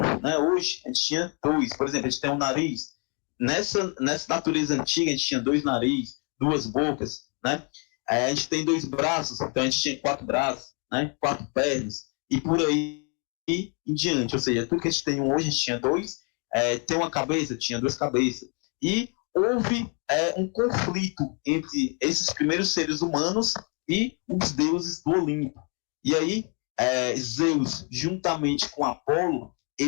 né, hoje, a gente tinha dois. Por exemplo, a gente tem um nariz. Nessa natureza antiga, a gente tinha 2 narizes, 2 bocas, né? A gente tem 2 braços, então a gente tinha 4 braços, né? 4 pernas, e por aí em diante. Ou seja, tudo que a gente tem hoje, a gente tinha 2. Tem uma cabeça, tinha 2 cabeças. E houve um conflito entre esses primeiros seres humanos e os deuses do Olimpo. E aí, Zeus, juntamente com Apolo,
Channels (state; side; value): quieter; right; 37.1 dB